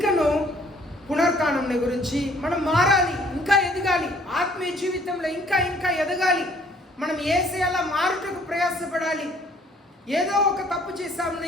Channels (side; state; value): both; normal; correlation 0.59